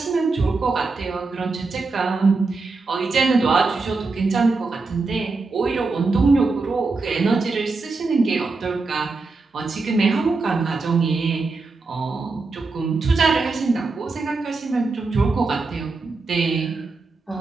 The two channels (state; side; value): quieter; left; 3.9 dB